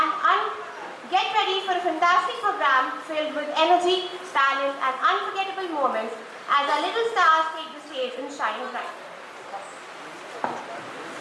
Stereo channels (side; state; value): both; identical; correlation 1.00